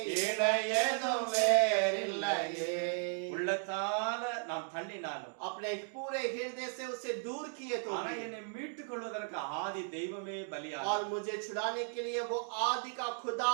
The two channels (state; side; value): silent; left; 54 dB below the other